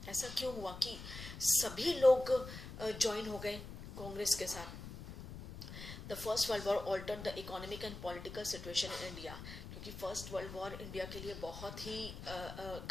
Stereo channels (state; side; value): noise; left; rumble, 11 dB below the sound